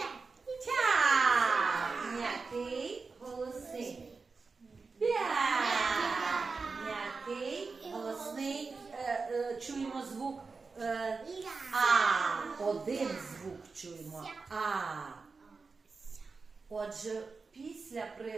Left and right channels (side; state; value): left; quieter; 4.4 dB